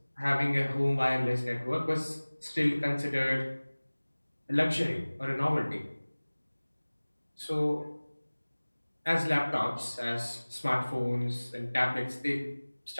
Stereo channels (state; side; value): inverted; both; correlation -1.00